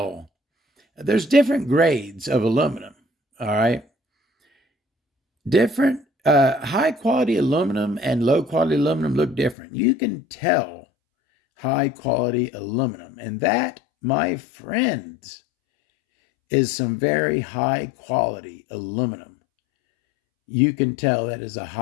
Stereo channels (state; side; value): drops out; right; at 9.6 s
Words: there's different grades of aluminum, all right? Different high quality aluminum and low quality aluminum look different. You can tell high quality aluminum. And that, my friends, is some very high quality aluminum. You can tell that is a